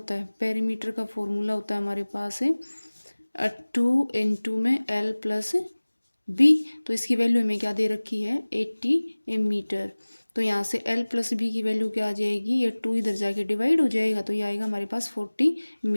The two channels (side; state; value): both; inverted; correlation -1.00